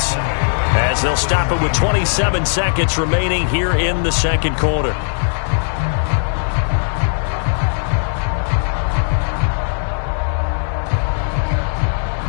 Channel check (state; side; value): silent; right; 61 dB below the other